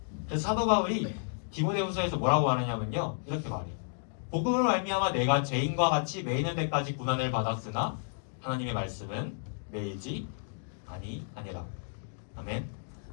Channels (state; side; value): silent; right; digital silence